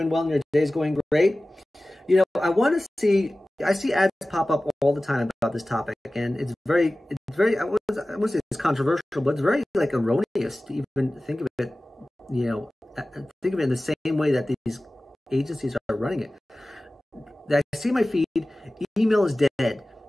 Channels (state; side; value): normal; both; correlation 0.97